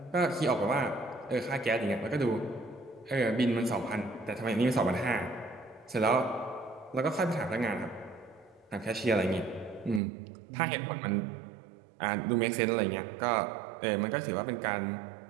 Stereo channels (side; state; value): left; drops out; at 10.0 s